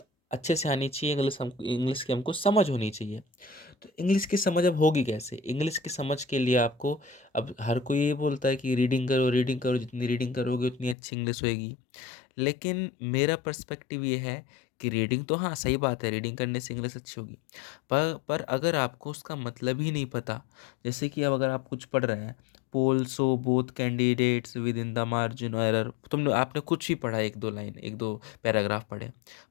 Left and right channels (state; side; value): drops out; right; at 11.0 s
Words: अच्छे से आनी चाहिए। इंग्लिश की हमको समझ होनी चाहिए। तो इंग्लिश की समझ अब होगी कैसे? इंग्लिश की समझ के लिए आपको, अब हर कोई ये बोलता है कि रीडिंग करो, रीडिंग करो, जितनी रीडिंग करोगे उतनी अच्छी इंग्लिश होएगी। लेकिन मेरा पर्सपेक्टिव ये है कि रीडिंग तो हाँ सही बात है, रीडिंग करने से इंग्लिश अच्छी होगी। पर अगर आपको उसका मतलब ही नहीं पता, जैसे कि अब अगर आप कुछ पढ़ रहे हैं, poll so both candidates within the margin error, तुमने आपने कुछ ही पढ़ा, एक दो लाइन, एक दो पैराग्राफ पढ़े,